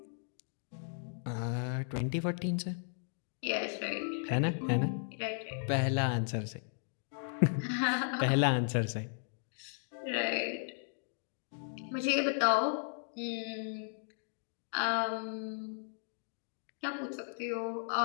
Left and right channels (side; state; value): right; silent; digital silence